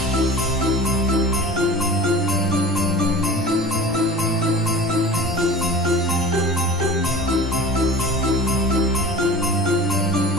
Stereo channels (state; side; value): normal; both; correlation 0.38